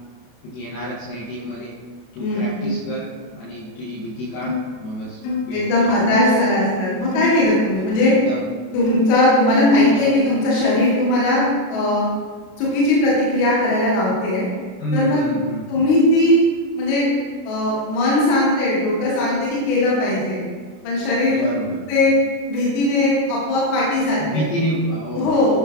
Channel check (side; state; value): right; late; 32 ms